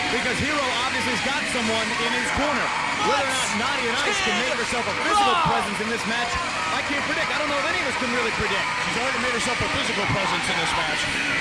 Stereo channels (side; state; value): both; identical; correlation 1.00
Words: because Hero obviously has got someone in his corner. Whether or not Nadia Nice can make herself a physical presence in this match, I can't predict. I don't know if any of us can really predict. She's already made herself a physical presence in this match.